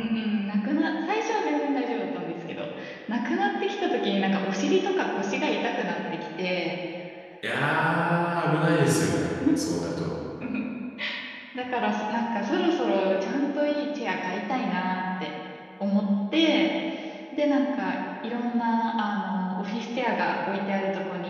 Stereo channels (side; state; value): both; identical; correlation 1.00